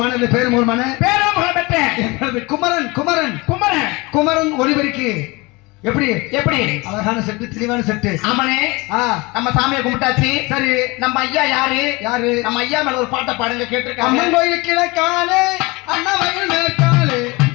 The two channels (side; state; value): right; quieter; 24.5 dB